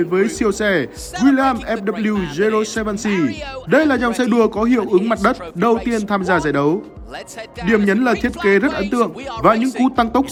với siêu xe Williams FW 07C. Đây là dòng xe đua có hiệu ứng mặt đất đầu tiên tham gia giải đấu. Điểm nhấn là thiết kế rất ấn tượng và những cú tăng tốc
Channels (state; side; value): identical; both; correlation 1.00